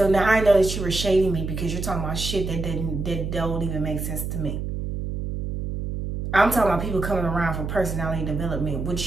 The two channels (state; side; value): noise; right; hum, 4 dB below the sound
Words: now I know that you were shading me because you're talking about shit that don't even make sense to me. I'm talking about people coming around for personality development,